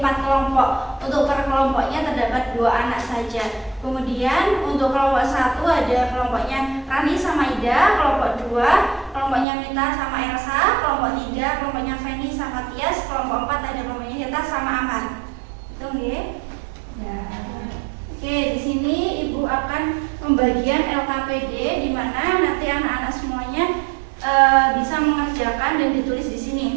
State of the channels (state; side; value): drops out; left; at 9.5 s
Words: 4 kelompok. Untuk per kelompoknya terdapat 2 anak saja. Kemudian untuk kelompok 1 ada kelompoknya Rani sama Ida, kelompok 2 kelompoknya Mita sama Elsa, kelompok 3 kelompoknya Feni sama Tias, kelompok 4 ada kelompoknya Hita sama Aman. Itu nggih? Ya. Oke, di sini Ibu akan membagian LKPD di mana nanti anak-anak semuanya bisa mengerjakan dan ditulis di